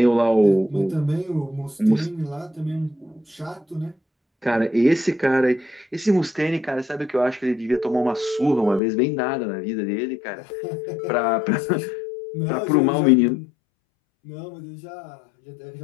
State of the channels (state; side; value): drops out; right; at 8.8 s